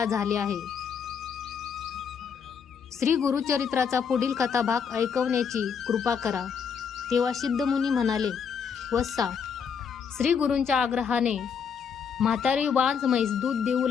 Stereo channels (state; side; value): quieter; right; 6.7 dB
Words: झाले आहे. श्री गुरुचरित्राचा पुढील कथाभाग ऐकवण्याची कृपा करा. तेव्हा सिद्धमुनी म्हणाले, वत्सा, श्री गुरूंच्या आग्रहाने म्हातारी वांज म्हैस दूध देऊ